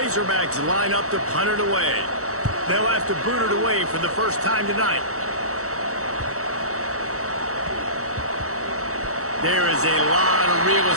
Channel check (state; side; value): late; left; 0.65 ms